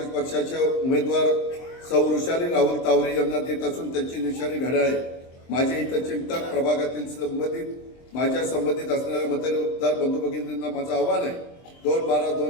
पक्षाच्या उमेदवार सौ वृषाली राहुल तावरे यांना देत असून त्यांची निशाणी घड्याळ आहे. माझे हितचिंतक प्रभागातील माझ्या संबंधित असणाऱ्या मतदार बंधू भगिनींना माझं आव्हान आहे.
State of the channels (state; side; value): late; right; 23 ms